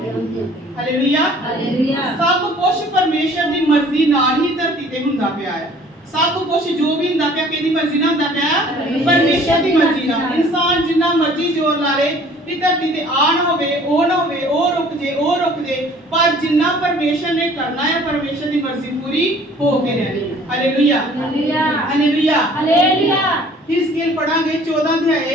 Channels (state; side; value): normal; both; correlation 0.53